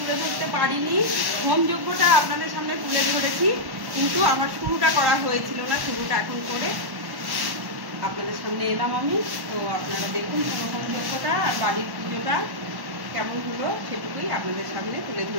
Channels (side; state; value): left; late; 1.1 ms